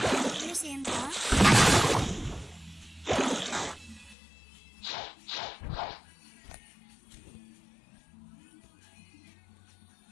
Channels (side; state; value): right; drops out; at 4.2 s